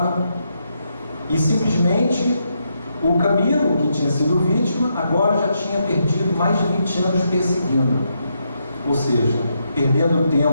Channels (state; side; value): inverted; both; correlation -0.80